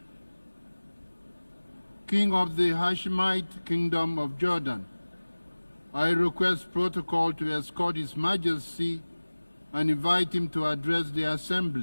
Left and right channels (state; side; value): inverted; both; correlation -1.00